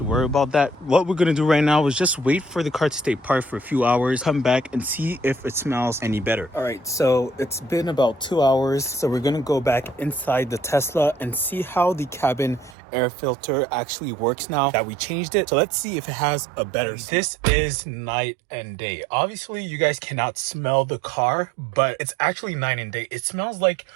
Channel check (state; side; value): drops out; left; at 12.8 s